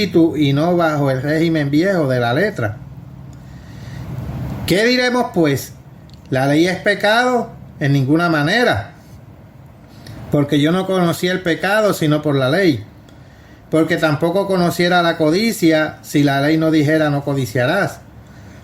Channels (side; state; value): both; identical; correlation 1.00